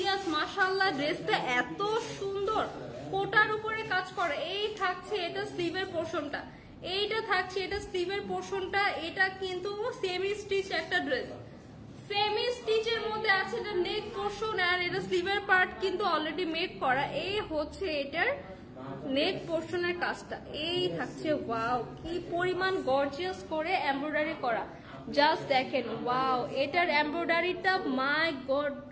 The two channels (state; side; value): identical; both; correlation 1.00